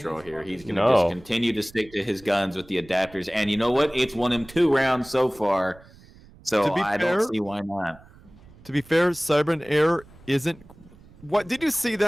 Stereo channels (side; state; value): right; noise; rumble, 24 dB below the sound